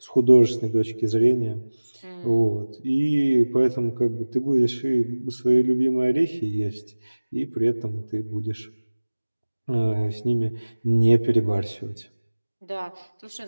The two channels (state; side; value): inverted; both; correlation -1.00